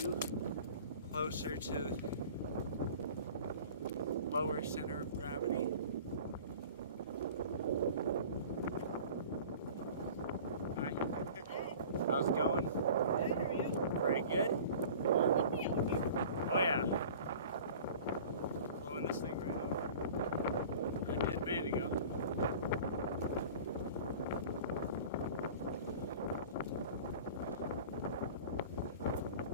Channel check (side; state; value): both; inverted; correlation -0.42